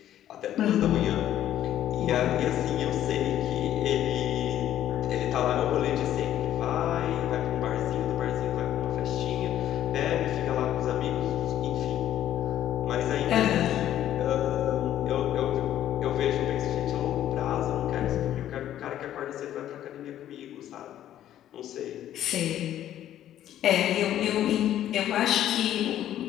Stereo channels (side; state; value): right; quieter; 11.8 dB